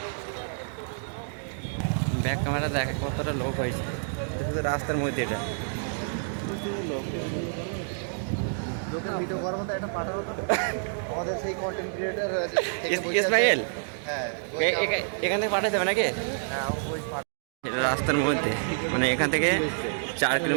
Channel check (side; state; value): left; silent; digital silence